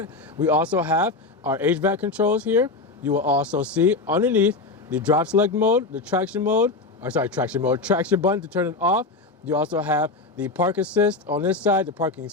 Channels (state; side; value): quieter; right; 3.5 dB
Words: We also have our HVAC controls here. You will also see underneath the drop select mode, the traction button to turn it off. You also have the park assist on this side, the parking